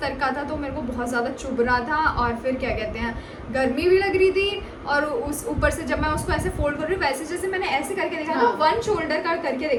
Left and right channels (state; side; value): identical; both; correlation 1.00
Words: का था, तो मेरे को बहुत ज़्यादा चुभ रहा था, और फिर क्या कहते हैं गर्मी भी लग रही थी, और उस ऊपर से जब मैं उसको ऐसे फोल्ड कर रही हूँ वैसे जैसे मैंने ऐसे करके देखा था, वन शोल्डर का करके